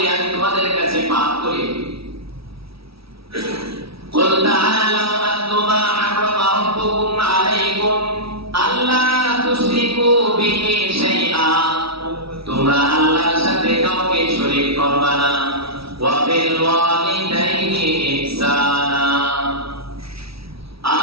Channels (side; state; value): left; late; 0.76 ms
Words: আমি তোমাদের কাছে পাঠ করি। কুল তাআলাউ আতলু মা হাররামা রাব্বুকুম আলাইকুম আল্লা তুশরিকু বিহি শাইআ, তোমরা আল্লাহর সাথে কাউকে শরীক করবে না। ওয়া বিল ওয়ালিদাইনি ইহসানা,